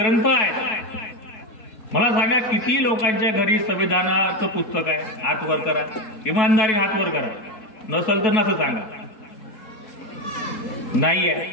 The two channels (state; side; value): late; right; 4.6 ms